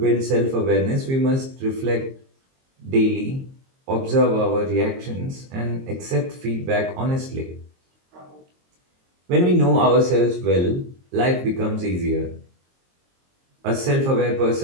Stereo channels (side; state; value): left; late; 22 ms